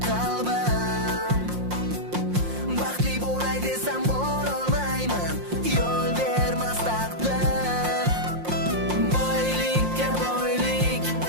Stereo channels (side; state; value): left; late; 5.6 ms